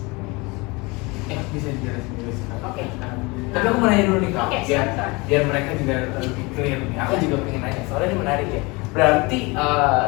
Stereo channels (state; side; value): quieter; right; 25.7 dB